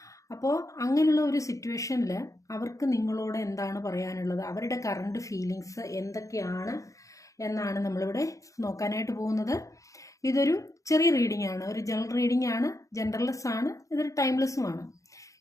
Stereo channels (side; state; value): right; late; 0.16 ms